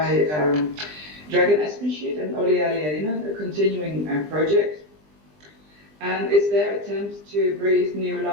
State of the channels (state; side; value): late; left; 20 ms